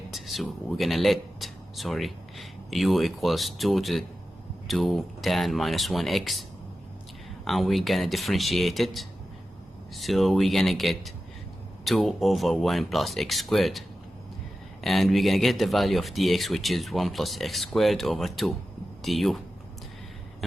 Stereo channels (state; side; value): normal; both; correlation 0.93